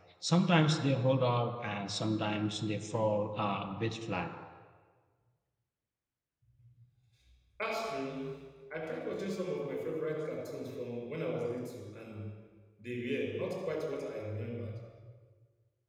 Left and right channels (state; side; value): identical; both; correlation 1.00